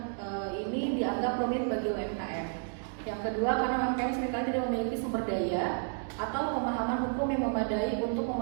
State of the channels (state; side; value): silent; left; 57 dB below the other